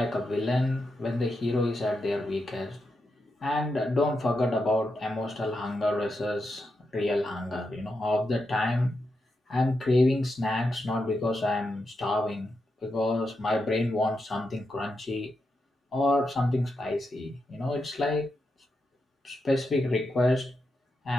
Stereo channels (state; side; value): normal; both; correlation 0.86